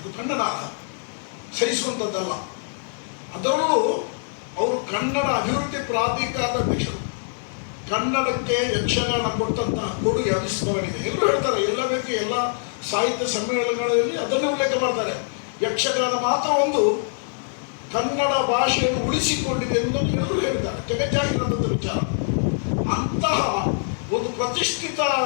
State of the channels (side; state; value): right; silent; digital silence